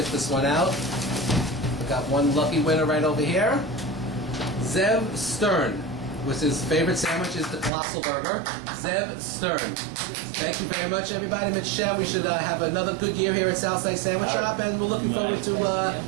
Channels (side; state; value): left; drops out; at 7.7 s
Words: this one out. We got one lucky winner right over here. Zev Stern, which his favorite sandwich is the Colossal Burger. Zev Stern. Thank you very much, everybody. Mitzvah, we should have another good year here at Southside Sandwich Shop, and we're looking forward to